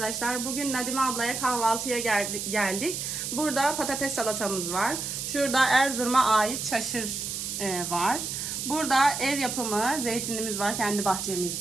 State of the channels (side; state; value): right; noise; hiss, 4 dB below the sound